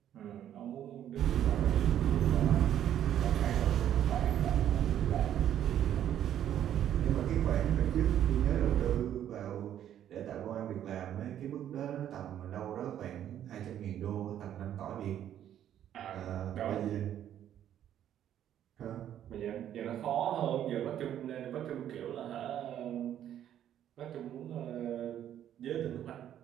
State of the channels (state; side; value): quieter; left; 10.7 dB